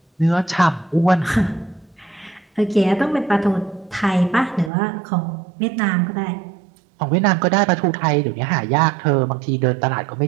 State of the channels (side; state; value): left; drops out; at 4.7 s